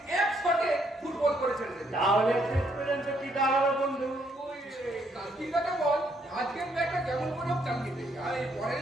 এক শটে ফুটবল করে ছেড়ে দেবে। তাহলে শেষ পর্যন্ত কি দাঁড়াবে বন্ধু? ওই কালকিটাকে বল আজকের ম্যাচটা কেমন করে হোক চালিয়ে দেবে, আর এই পরের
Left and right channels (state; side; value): normal; both; correlation 0.71